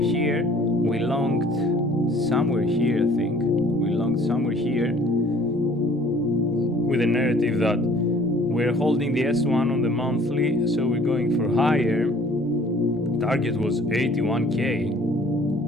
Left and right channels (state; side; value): normal; both; correlation 0.54